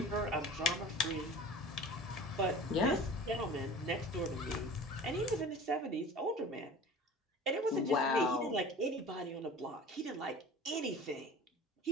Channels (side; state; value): both; normal; correlation 0.40